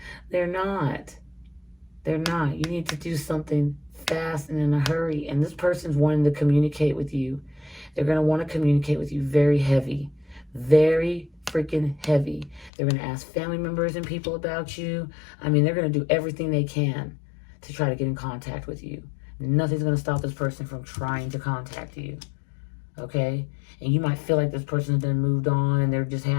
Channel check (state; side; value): drops out; right; at 12.7 s